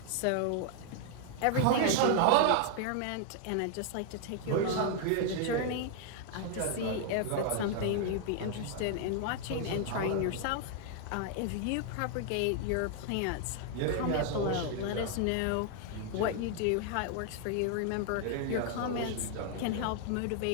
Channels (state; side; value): different; both; correlation 0.00